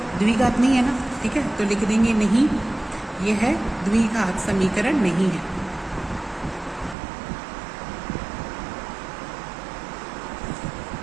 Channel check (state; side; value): drops out; left; at 7.0 s